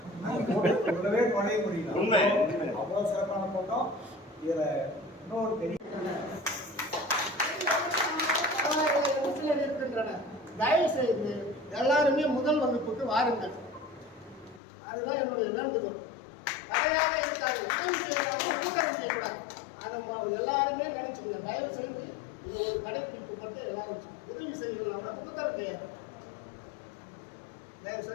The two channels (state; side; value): drops out; right; at 14.6 s